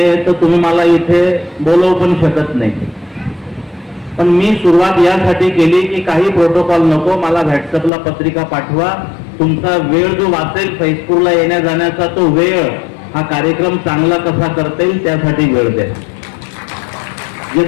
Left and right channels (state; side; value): drops out; right; at 7.9 s